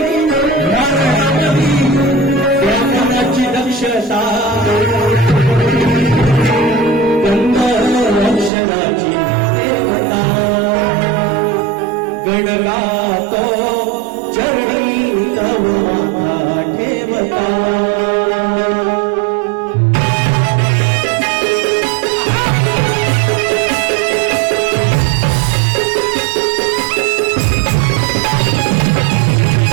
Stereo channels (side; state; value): left; drops out; at 8.5 s